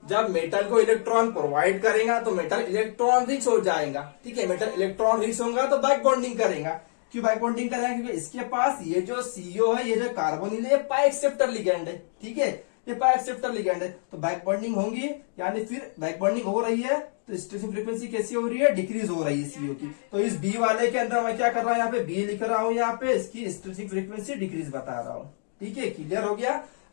जब मेटल को इलेक्ट्रॉन प्रोवाइड करेगा तो मेटल इलेक्ट्रॉन रिच हो जाएगा, ठीक है। मेटल इलेक्ट्रॉन रिच होगा तो बैक बॉन्डिंग करेगा। क्यों बैक बॉन्डिंग करेगा, क्योंकि इसके पास ये जो CO है, ये जो कार्बोनिल है, ये पाई एक्सेप्टर लिगैंड है, ठीक है, ये पाई एक्सेप्टर लिगैंड है, तो बैक बॉन्डिंग होंगी, यानी फिर बैक बॉन्डिंग हो रही है तो स्ट्रेचिंग फ्रीक्वेंसी कैसी हो रही है, डिक्रीज हो रही है CO की। तो इस B वाले के अंदर मैं क्या कर रहा हूँ, यहाँ पे B लिख रहा हूँ, यहाँ पे इसकी स्ट्रेचिंग फ्रीक्वेंसी डिक्रीज बता रहा हूँ, ठीक है। क्लियर हो गया,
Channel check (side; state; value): right; silent; digital silence